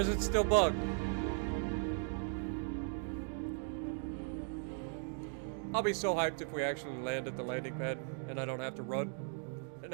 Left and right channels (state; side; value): silent; left; 53 dB below the other